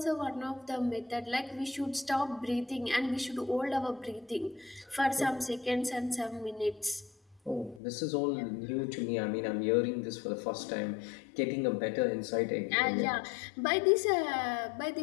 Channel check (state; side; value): drops out; right; at 7.8 s